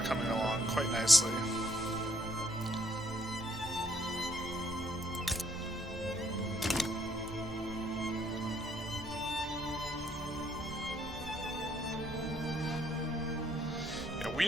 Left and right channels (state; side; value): normal; both; correlation 0.69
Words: coming along quite nicely. Yeah, we